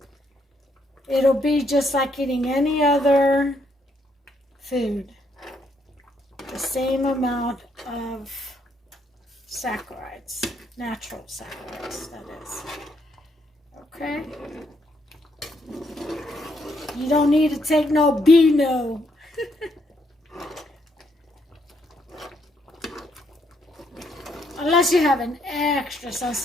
It'll be just like eating any other food. The same amount of saccharides, natural saccharides, that is. Okay? You don't need to take no Beano. Unless you have an extra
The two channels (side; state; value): both; normal; correlation 0.74